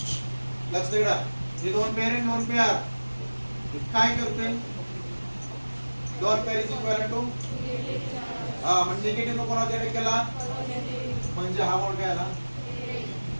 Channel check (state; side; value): inverted; both; correlation -1.00